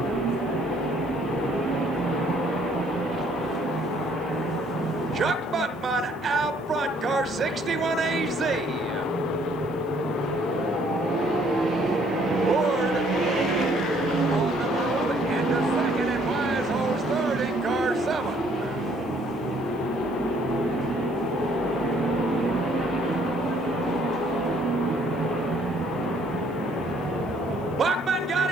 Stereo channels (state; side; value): noise; left; hiss, 29 dB below the sound